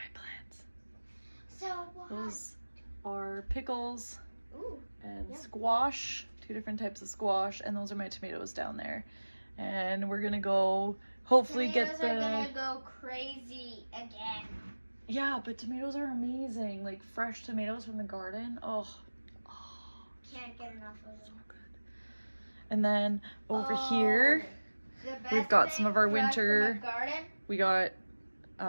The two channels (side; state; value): both; inverted; correlation -1.00